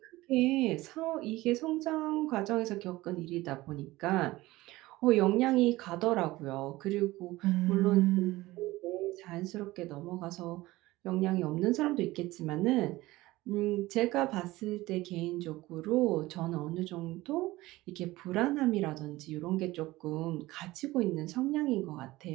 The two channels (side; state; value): left; quieter; 18.6 dB